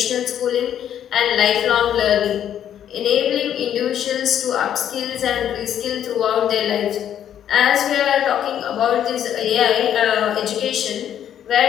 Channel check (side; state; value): right; quieter; 10.0 dB